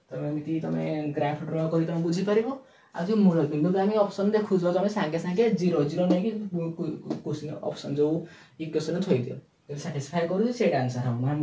तो एमती तुम ग्राफ ड्रा करी तुम बुझी परिबो आ जो मूल बिंदु आम ऑप्शन देखु तुम सागे सागे 0 0 नहीं क्वेश्चन ऑप्शन जो इक्वेशन थई दियो सैटिस्फाई करू से आंसर हम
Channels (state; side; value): identical; both; correlation 1.00